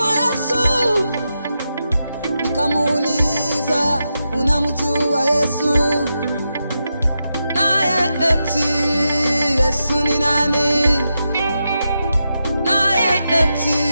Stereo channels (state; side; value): inverted; both; correlation -0.87